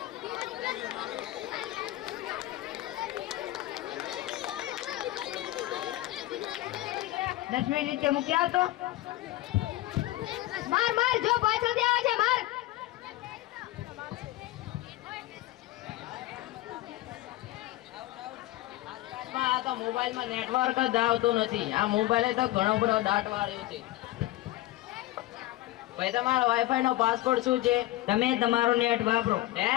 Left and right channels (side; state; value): right; quieter; 16.7 dB